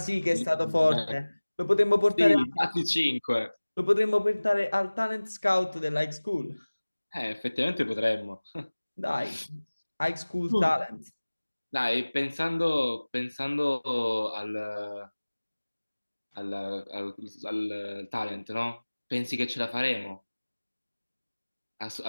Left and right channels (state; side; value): inverted; both; correlation -1.00